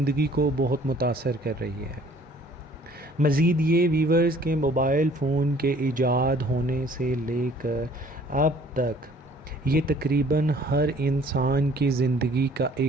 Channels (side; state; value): both; normal; correlation 0.55